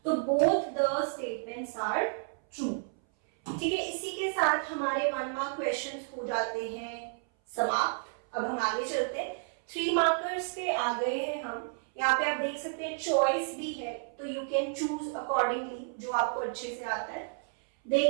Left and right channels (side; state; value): left; silent; 57 dB below the other